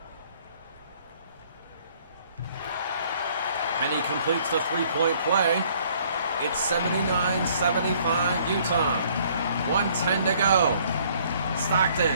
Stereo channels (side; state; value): both; inverted; correlation -0.61